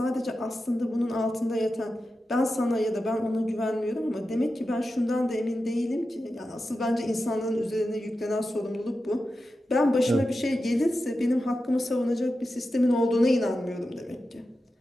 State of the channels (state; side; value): normal; both; correlation 0.91